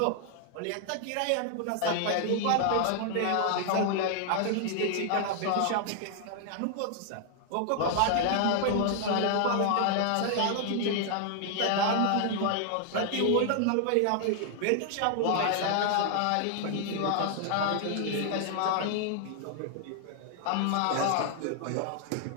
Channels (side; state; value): both; different; correlation 0.00